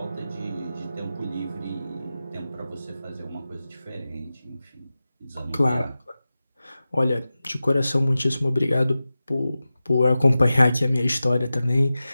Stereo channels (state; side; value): inverted; both; correlation -0.94